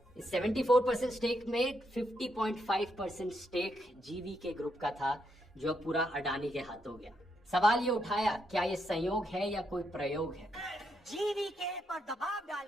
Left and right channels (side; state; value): both; normal; correlation 0.79